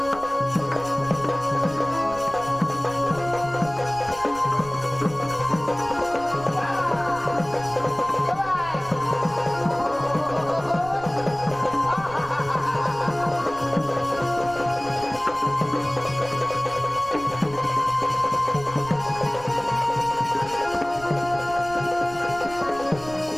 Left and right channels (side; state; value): right; noise; rumble, 18 dB below the sound